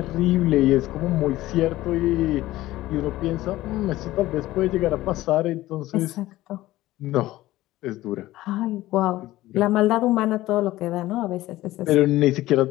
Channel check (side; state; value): right; quieter; 16.5 dB